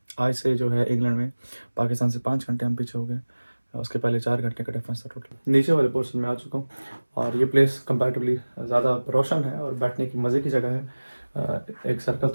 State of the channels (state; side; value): inverted; both; correlation -1.00